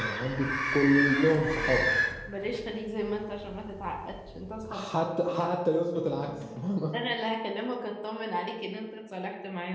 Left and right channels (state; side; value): identical; both; correlation 1.00